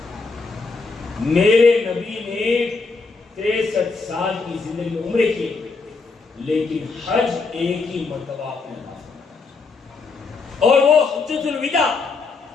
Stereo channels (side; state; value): right; quieter; 4.3 dB